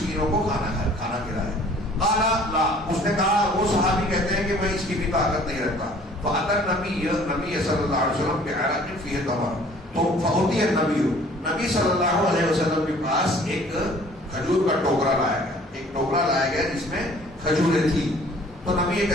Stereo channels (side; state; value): both; normal; correlation 0.54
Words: کو کھانا کھلائے. قال لا، اس نے کہا، وہ صحابی کہتے ہیں کہ میں اس کی بھی طاقت نہیں رکھتا. فأتى النبي صلی اللہ علیہ وسلم بعرق فيه تمر، تو فأتي نبی صلی اللہ علیہ وسلم کے پاس ایک کھجور کا ٹوکرا لایا گیا، ایک ٹوکرا لایا گیا جس میں کھجوریں تھی. تو نبی